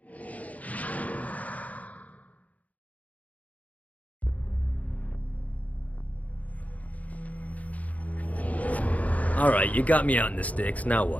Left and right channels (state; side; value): late; right; 0.072 ms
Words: Alright, you got me out in the sticks, now